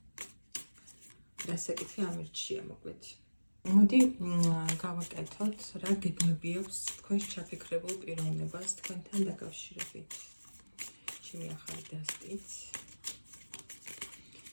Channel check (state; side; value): inverted; both; correlation -1.00